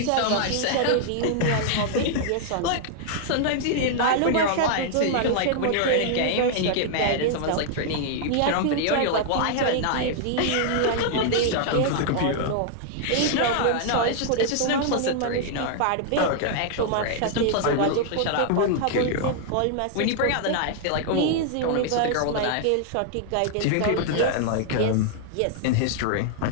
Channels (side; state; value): both; different; correlation 0.00